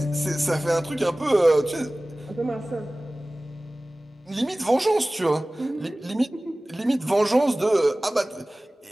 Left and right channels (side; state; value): both; normal; correlation 0.98